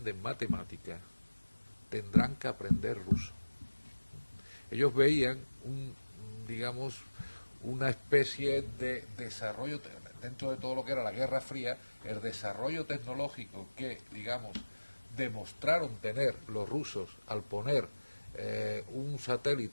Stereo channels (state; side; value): inverted; both; correlation -1.00